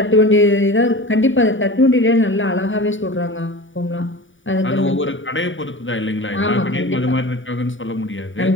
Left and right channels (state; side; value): late; right; 0.57 ms